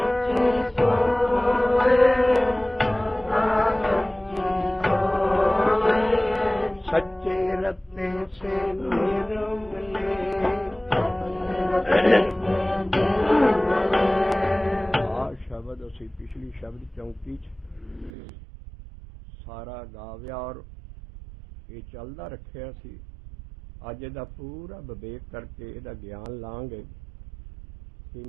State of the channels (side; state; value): left; drops out; at 18.1 s